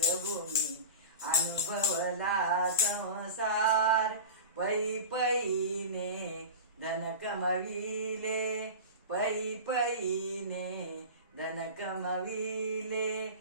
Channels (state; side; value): inverted; both; correlation -0.31